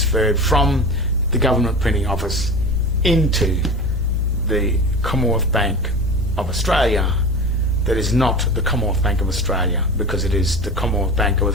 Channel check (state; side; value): noise; left; hum, 14 dB below the sound